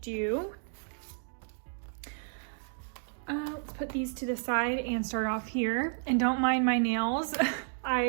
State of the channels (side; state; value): left; silent; digital silence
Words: do. Let's put these to the side and start off here. And don't mind my nails.